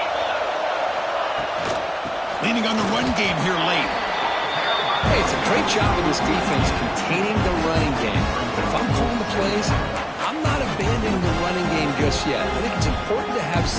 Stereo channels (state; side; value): identical; both; correlation 1.00